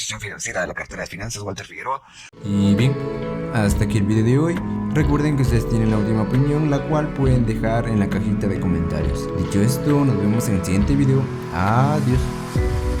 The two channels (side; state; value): both; identical; correlation 1.00